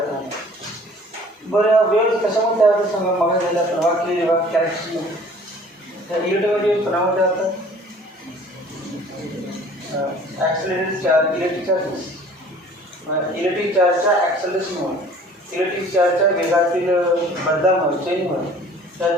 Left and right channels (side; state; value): both; normal; correlation 0.50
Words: नाही. बरं वेव्स कशामुळे तयार होतात सांगा? मग झाल्या तर वाक्य कॅरेक्टरिस्टिक त्या इलेक्ट्रोवेव्स कोणामध्ये होतात? Accelerated charge, electric charges. Electric चार्जच्या ॲक्सलरेशनमुळे, इलेक्ट्रिक चार्जच्या वेगातील बदलामुळे, चेंजमुळे त्या